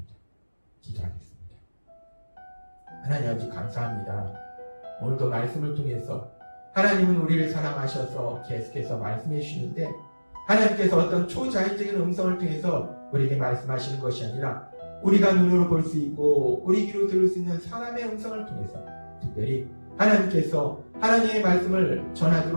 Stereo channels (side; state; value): both; inverted; correlation -1.00